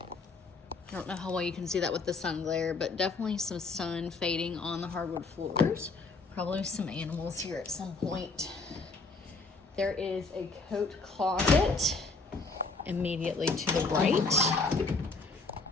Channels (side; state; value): right; quieter; 3.9 dB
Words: I don't know how well you can see that with the sun glare, but definitely some sun fading on the hardwood floors. Probably some animals here at some point. There is a coat closet immediately to the right.